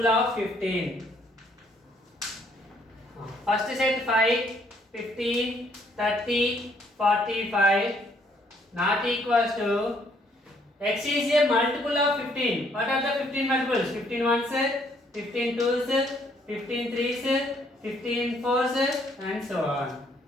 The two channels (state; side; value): normal; both; correlation 0.67